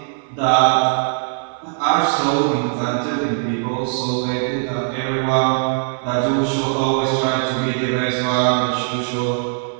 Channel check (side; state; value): left; silent; 60 dB below the other